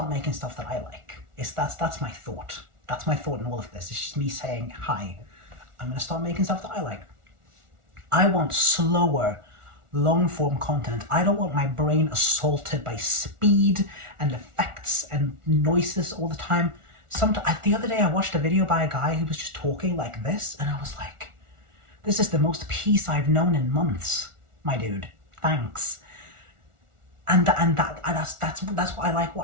making stuff that I like. That's my thought. That's my thought in all of this. It's just me saying, hi, I'm gonna start making stuff that I like. I want slower, long-form content. I don't want my brain assaulted by speed and effects and noises all the time. The other day I watched a video by a guy who was just talking like this, and I was like, this is the most peace I've known in months, my dude. Thanks. And that's what I like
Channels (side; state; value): left; late; 1.4 ms